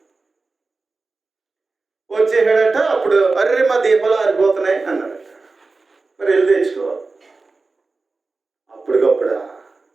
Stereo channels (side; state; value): left; quieter; 3.8 dB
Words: వచ్చేసాడట. అప్పుడు అర్రే మా దీపాలు ఆరిపోతున్నాయి అన్నాడట. మరి వెళ్ళి తెచ్చుకోవాలి.